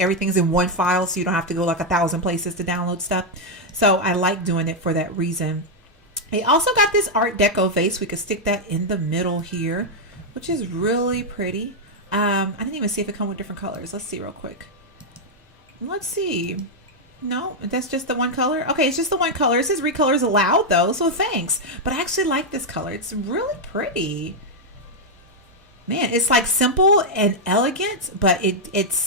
in one file, so you don't have to go like 1,000 places to download stuff. So I like doing it for that reason. I also got this Art Deco vase. We could stick that in the middle here, which is really pretty. I didn't even see if it comes with different colors. Let's see real quick. Let's see. No, that's just the one color. Okay, it's just the one color. It says recolors allowed though, so thanks. But I actually like this color. It's really pretty. Man, it's like simple and elegant, but it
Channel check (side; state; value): both; normal; correlation 0.00